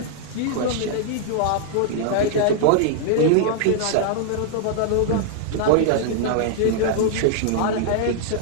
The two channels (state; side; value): different; both; correlation -0.01